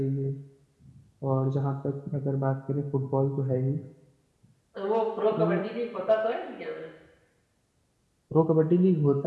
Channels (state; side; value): identical; both; correlation 1.00